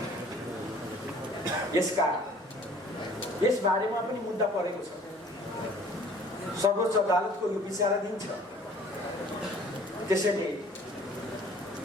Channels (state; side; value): normal; both; correlation 0.53